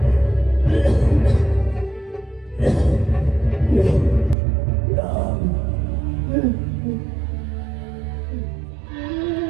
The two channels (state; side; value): drops out; left; at 4.4 s